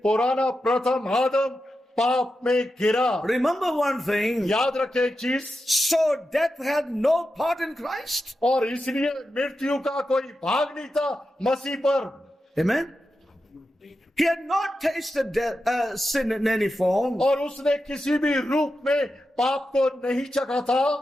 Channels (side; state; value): both; normal; correlation 0.90